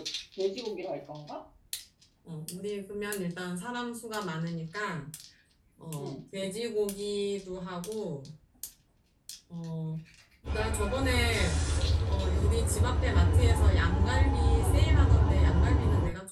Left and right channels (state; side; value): identical; both; correlation 1.00